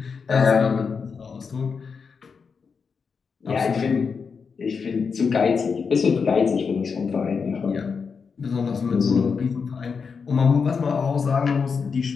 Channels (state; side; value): quieter; right; 5.6 dB